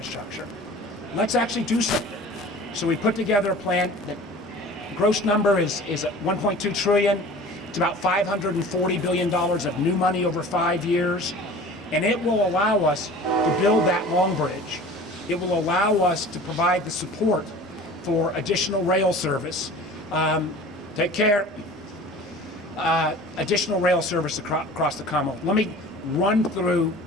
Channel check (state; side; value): normal; both; correlation 0.42